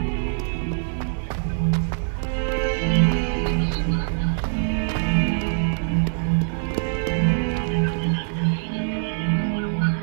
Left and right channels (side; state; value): left; silent; digital silence